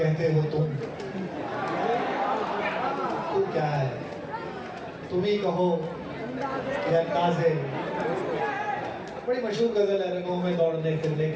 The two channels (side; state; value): both; identical; correlation 1.00